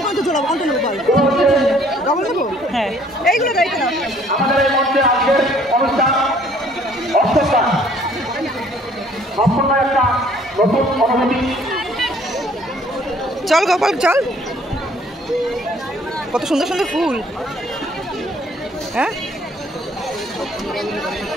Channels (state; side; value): normal; both; correlation 0.59